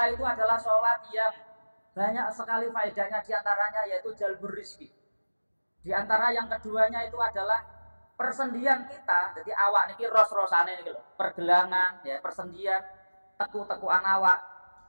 itu adalah sholat yang banyak sekali faedahnya, diantaranya yaitu jalbur rizki. Di antara yang keduanya itu adalah persendian kita. Jadi awak niki ros-rosane niki lho, pergelangan, ya persendian, teku-tekuan awak.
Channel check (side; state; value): both; inverted; correlation -1.00